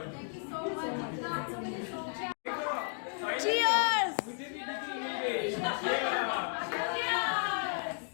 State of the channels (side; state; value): right; silent; 55 dB below the other